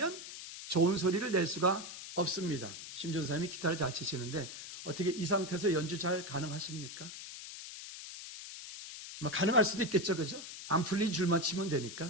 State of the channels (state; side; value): noise; left; hiss, 11 dB below the sound